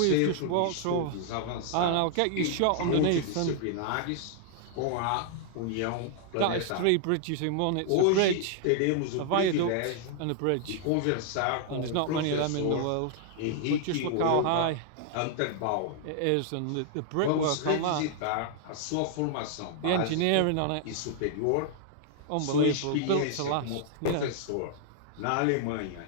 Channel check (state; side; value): different; both; correlation -0.01